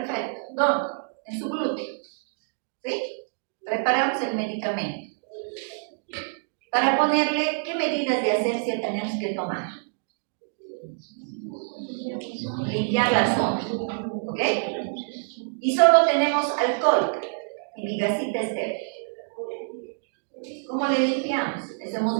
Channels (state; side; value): silent; left; digital silence